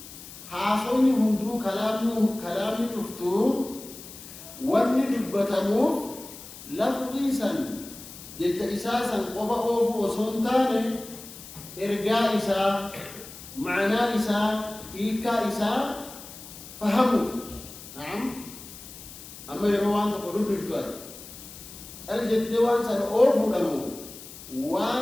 حاصوني هندو كلام تفتو واني دبتمو لفظي سن جت إساسا قفا أوفو وصنتاني إرقاء إسا معنى إسا إيكا إسا فهموا. نعم. أما يروان تقولوا بالتواس الجتوان سن أوفو لمو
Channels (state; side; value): noise; left; hiss, 15 dB below the sound